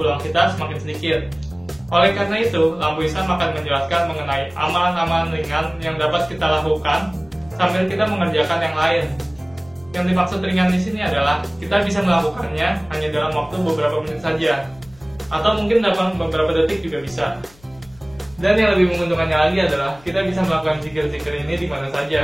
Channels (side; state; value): left; noise; hum, 27 dB below the sound